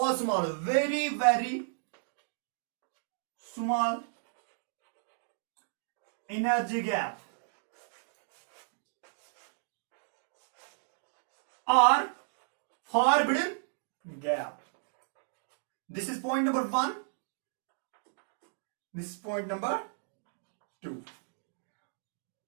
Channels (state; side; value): silent; left; digital silence